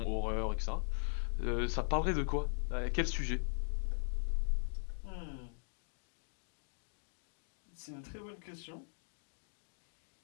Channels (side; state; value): right; silent; digital silence